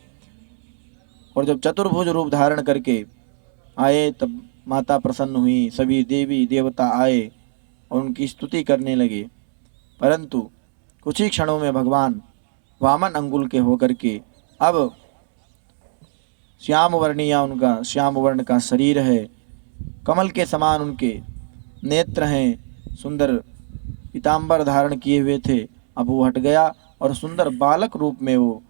और जब चतुर्भुज रूप धारण करके आए तब माता प्रसन्न हुई, सभी देवी देवता आए और उनकी स्तुति करने लगे। परंतु कुछ ही क्षणों में भगवान वामन अंगुल के होकर के अब श्याम वर्णिया, उनका श्याम वर्ण का शरीर है, कमल के समान उनके नेत्र हैं, सुंदर पीताम्बर धारण किए हुए थे। अब वो हट गया और सुंदर बालक रूप में वो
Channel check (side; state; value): left; silent; 66 dB below the other